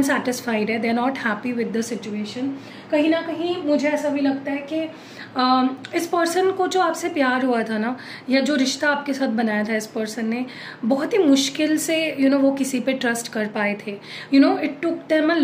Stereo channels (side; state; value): both; identical; correlation 1.00